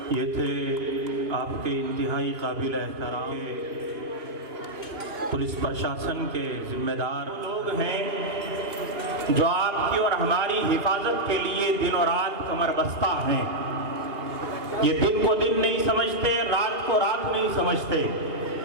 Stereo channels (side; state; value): left; late; 2.8 ms